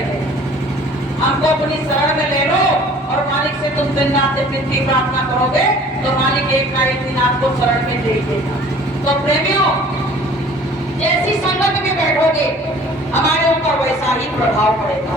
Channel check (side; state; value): both; normal; correlation 0.50